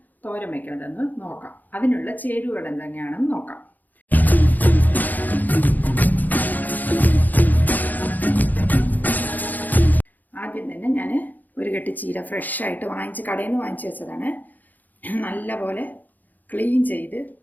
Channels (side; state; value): right; late; 0.084 ms